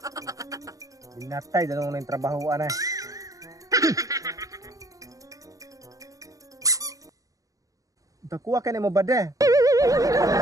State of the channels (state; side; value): late; left; 0.16 ms